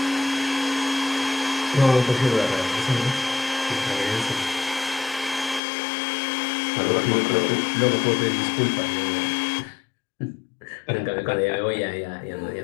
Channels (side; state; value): right; drops out; at 5.6 s